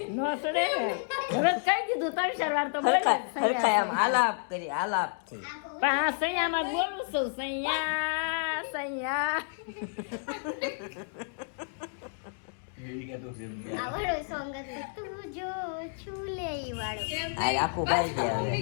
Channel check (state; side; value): silent; right; digital silence